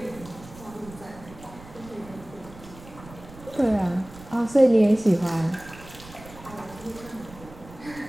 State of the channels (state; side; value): noise; right; rumble, 18 dB below the sound